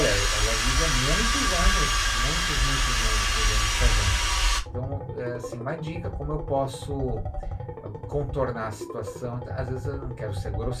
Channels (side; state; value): both; identical; correlation 1.00